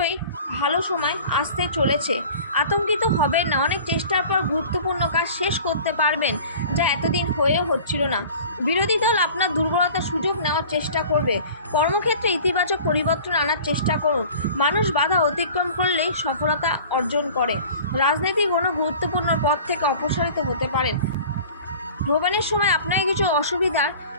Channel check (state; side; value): inverted; both; correlation -0.43